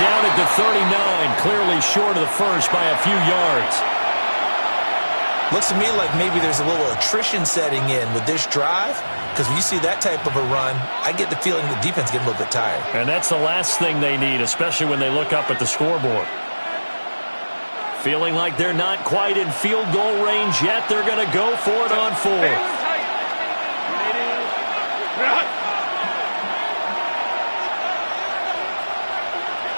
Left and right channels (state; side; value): inverted; both; correlation -1.00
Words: down at the 39, clearly short of the first by a few yards. Looks to me like maybe there's a little attrition setting in with this drive, because when you see that type of a run, I get the feeling the defense getting a little bit tired. And that's the last thing they need, especially when they look up at the scoreboard. Feeling like they're not quite in field goal range yet. They're going to go for it on 4th.